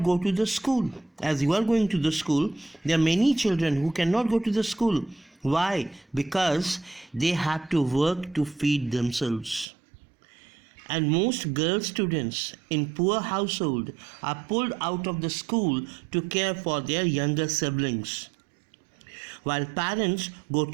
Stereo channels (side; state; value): left; drops out; at 9.7 s